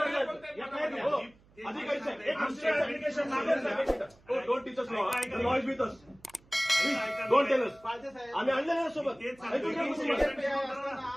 अधिकारी साहेब एक ऍप्लिकेशन मागेल दोन टीचर्स नॉईज विथ अस दोन टेलर्स आम्ही आणले ना सोबत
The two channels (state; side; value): noise; right; hum, 29 dB below the sound